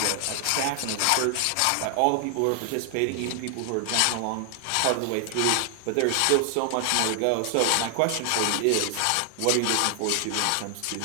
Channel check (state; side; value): different; both; correlation 0.00